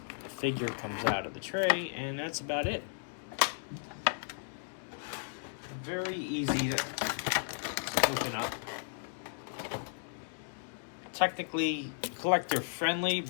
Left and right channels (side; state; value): right; silent; digital silence